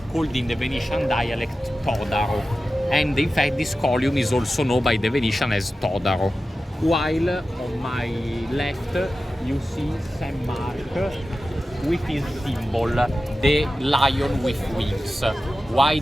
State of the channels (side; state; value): both; normal; correlation 0.94